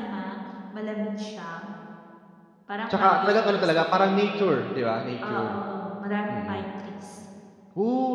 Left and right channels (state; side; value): identical; both; correlation 1.00